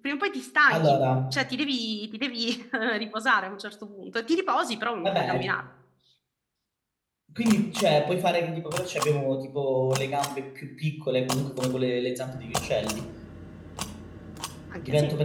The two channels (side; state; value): both; identical; correlation 1.00